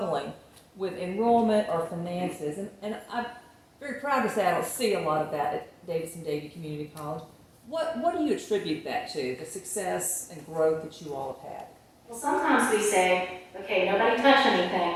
with enrollment or finances. And I'm very proud to say I don't see a lot of that at Davidson-Davie Community College. What do you attribute that to, the success and growth that you all have had? Well, sometimes we say, okay, nobody touch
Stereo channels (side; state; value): both; identical; correlation 1.00